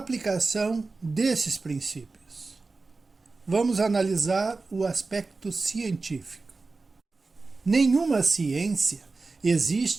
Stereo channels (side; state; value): left; quieter; 3.8 dB